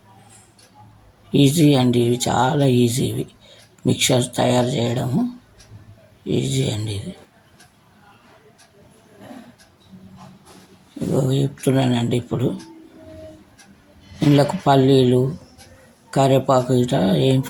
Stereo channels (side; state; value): both; identical; correlation 1.00